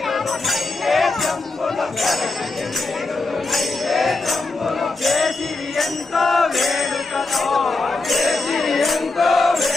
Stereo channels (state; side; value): quieter; right; 3.4 dB